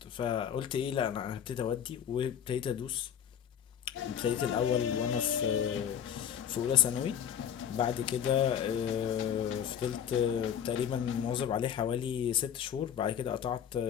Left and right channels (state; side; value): quieter; right; 8.9 dB